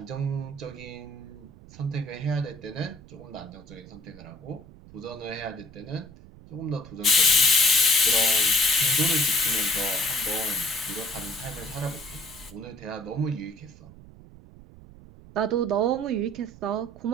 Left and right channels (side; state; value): right; noise; rumble, 20 dB below the sound